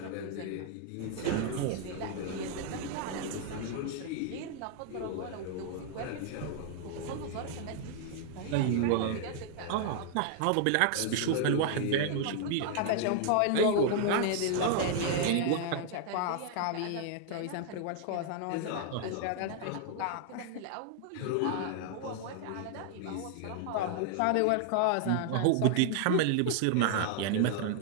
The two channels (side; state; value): both; different; correlation 0.00